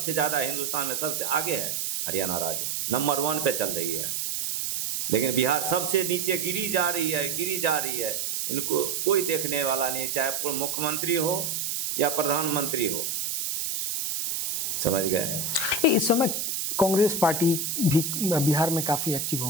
ज़्यादा हिंदुस्तान में सबसे आगे है हरियाणा राज्य, नंबर 1 पे चल रही है। लेकिन बिहार सबसे नीचे गिरी जा रही है, गिरी जा रही है। इनको कोई देखने वाला नहीं, चाहे मुख्यमंत्री हो या प्रधानमंत्री हो। समझ गए? इस समय कांग्रेस पार्टी भी बिहार में काफ़ी एक्टिव हो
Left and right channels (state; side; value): noise; right; hiss, 1 dB below the sound